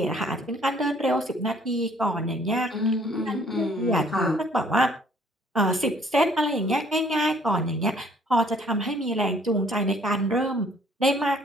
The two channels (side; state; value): both; normal; correlation 0.60